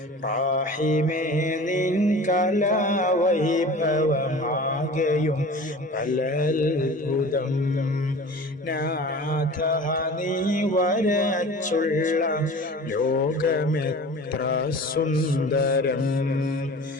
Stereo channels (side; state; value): both; normal; correlation 0.39